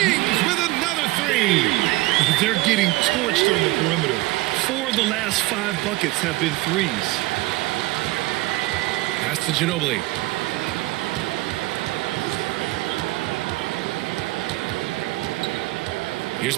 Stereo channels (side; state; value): left; quieter; 19.6 dB